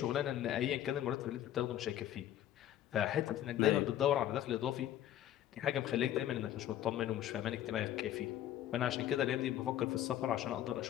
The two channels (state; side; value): quieter; right; 11.9 dB